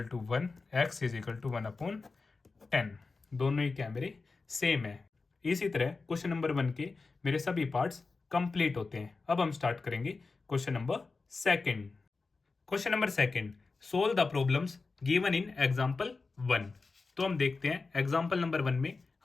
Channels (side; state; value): right; quieter; 4.1 dB